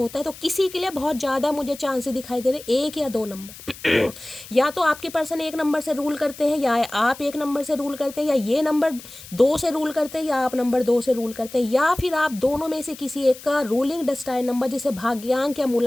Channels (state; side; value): noise; left; hiss, 17 dB below the sound